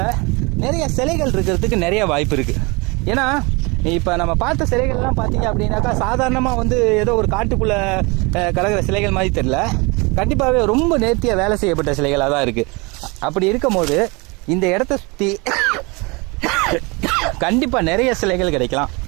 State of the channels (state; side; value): quieter; left; 27.7 dB